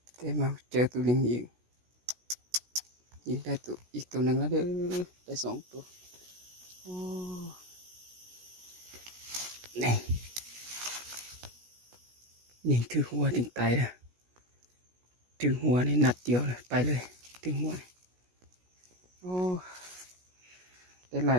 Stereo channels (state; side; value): late; left; 16 ms